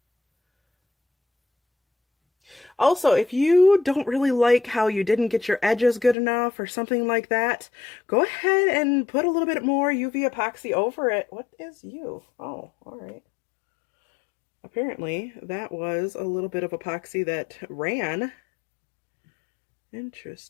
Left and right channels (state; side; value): drops out; right; at 6.2 s